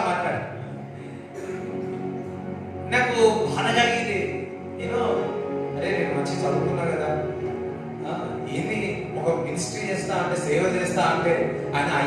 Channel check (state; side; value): identical; both; correlation 1.00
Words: మాట్లాడు. నాకు బాధ కలిగింది. అరే నేను మంచి చదువుకున్నా కదా, ఏంది ఒక మినిస్ట్రీ చేస్తా అంటే, సేవ చేస్తా అంటే ఆయన